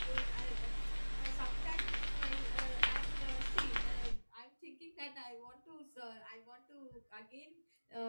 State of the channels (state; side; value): inverted; both; correlation -1.00